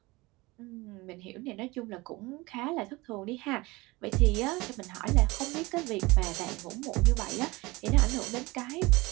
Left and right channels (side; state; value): left; quieter; 22.4 dB